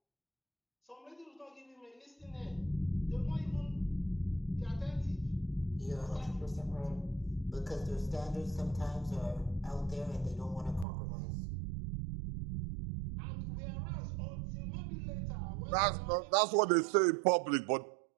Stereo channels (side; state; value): left; drops out; at 10.9 s